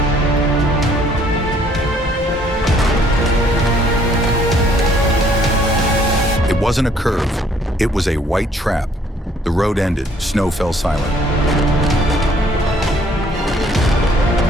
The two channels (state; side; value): normal; both; correlation 0.62